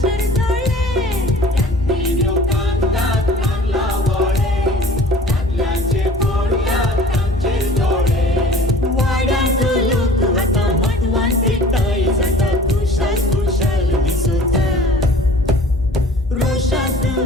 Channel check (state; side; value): normal; both; correlation 0.47